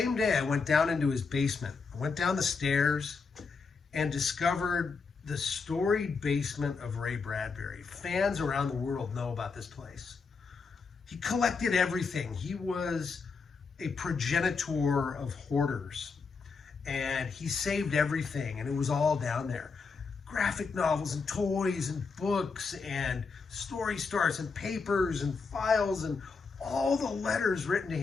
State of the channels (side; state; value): right; quieter; 4.9 dB